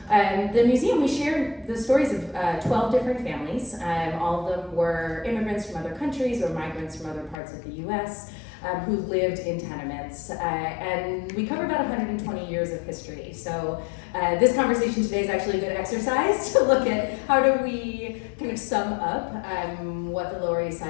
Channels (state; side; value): drops out; right; at 7.4 s